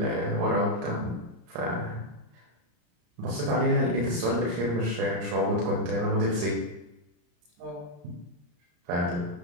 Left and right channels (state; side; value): late; left; 34 ms